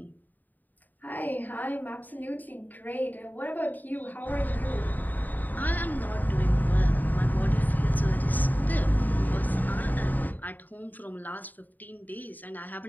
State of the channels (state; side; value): late; right; 0.086 ms